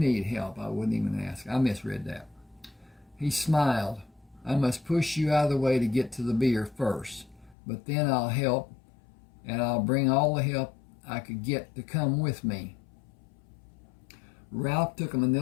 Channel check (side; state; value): right; drops out; at 7.6 s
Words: help, I wouldn't even ask. I misread that. He smiled. I must push you out of the way to get to the beer first, but then I'll help, and I'll bring all the help I could get to come with me. Ralph took a